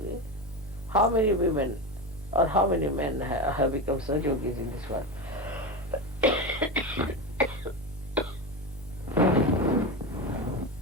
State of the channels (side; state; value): both; normal; correlation 0.19